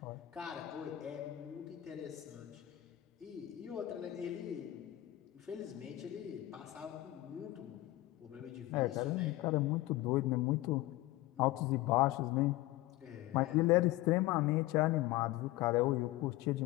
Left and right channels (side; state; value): right; quieter; 17.0 dB